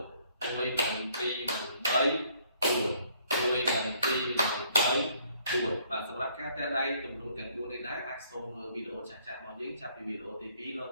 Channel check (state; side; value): inverted; both; correlation -0.64